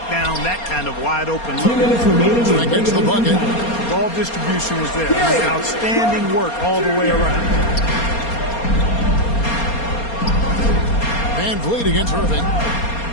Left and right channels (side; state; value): right; late; 4.3 ms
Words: down that kind of wide open look. 2 minutes remaining. That gets the bucket. Ball distribution was there. Outstanding work all the way around. Van Vliet against Irving.